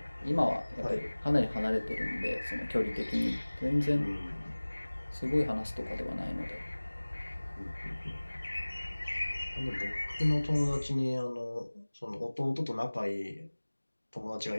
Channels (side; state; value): both; inverted; correlation -1.00